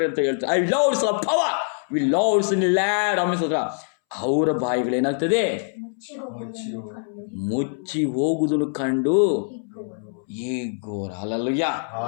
ಅಂತ ಹೇಳ್ತಾರೆ. I loves a power we loves in lad ಅಮಿಸೋದ್ರ. ಅವರ ಬಾಯಿಗಳೇನಾಗ್ತದೆ? ಮುಚ್ಚಿ ಹೋಗುವುದನ್ನು ಕಂಡು ಈಗೋರ. ಅಲ್ಲಲ್ಲಯ್ಯ,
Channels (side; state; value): right; silent; 63 dB below the other